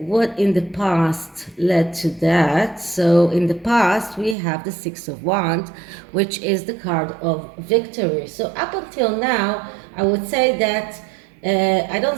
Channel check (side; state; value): left; drops out; at 4.4 s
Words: in the past led to that? So in the past, we have the Six of Wands, which is the card of victory. So up until now, I would say that I don't